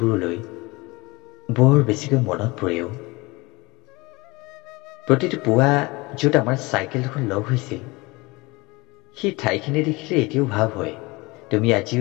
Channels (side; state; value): right; quieter; 23.8 dB